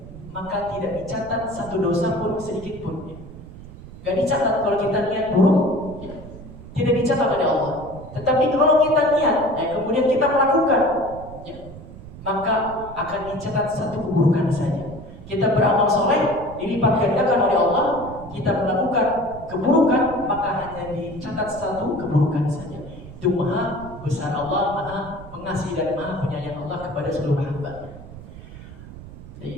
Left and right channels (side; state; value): right; noise; rumble, 15 dB below the sound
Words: maka tidak dicatat satu dosa pun sedikit pun. Gak dicatat kalau kita niat buruk, ya, tidak dicatat oleh Allah. Tetapi kalau kita niat, kemudian kita melakukan, ya, maka akan dicatat satu keburukan saja. Kita beramal soleh, dilipat gandakan oleh Allah. Kita melakukan keburukan, maka hanya dicatat satu keburukan saja. Itu maha besar Allah, maha pengasih dan maha penyayang Allah kepada seluruh hamba.